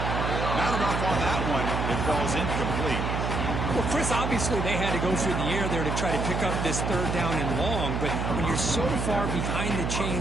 enough on that one. It falls incomplete. Well, Chris, obviously they had to go through the air there to try to pick up this third down and long, but when you're so far behind the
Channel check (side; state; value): right; noise; hum, 1 dB below the sound